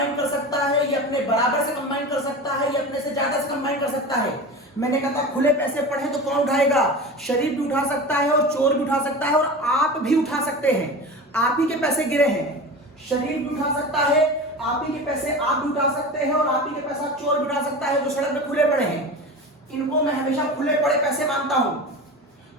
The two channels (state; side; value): normal; both; correlation 0.31